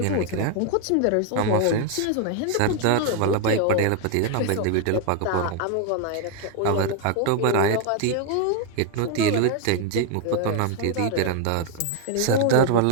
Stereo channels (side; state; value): both; different; correlation 0.01